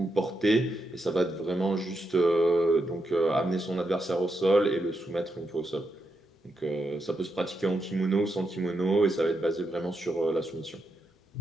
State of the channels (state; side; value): normal; both; correlation 0.84